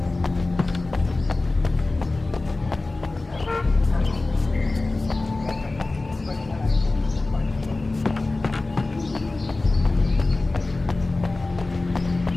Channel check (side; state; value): right; quieter; 3.2 dB